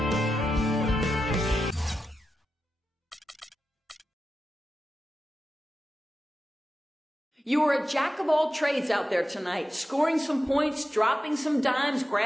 You are a jack of all trades out there tonight, scoring some points, dropping some dimes,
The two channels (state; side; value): normal; both; correlation 0.91